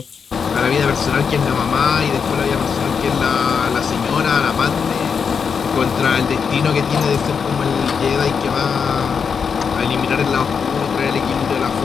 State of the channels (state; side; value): quieter; right; 6.2 dB